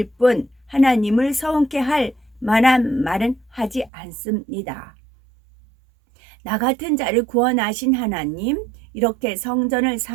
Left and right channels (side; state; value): left; drops out; at 3.9 s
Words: 뿐 하나님을 서운케 할 만한 말은 하지 않습니다. 나 같은 자를 구원하신 하나님, 이렇게 성전을